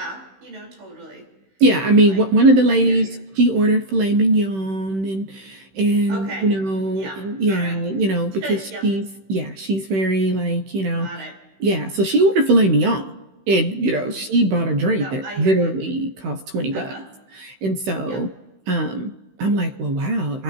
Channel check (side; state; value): left; late; 16 ms